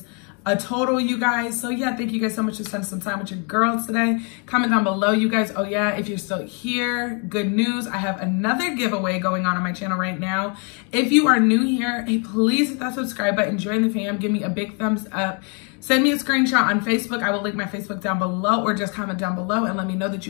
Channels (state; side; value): quieter; right; 36.9 dB